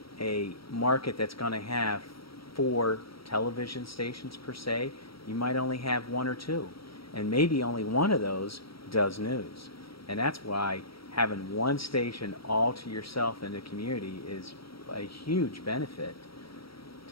a market that's going to have 4 television stations per se. You might only have 1 or 2, and maybe only one of those does news. And that's why having one station all to yourself in the community is a huge benefit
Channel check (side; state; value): right; late; 0.75 ms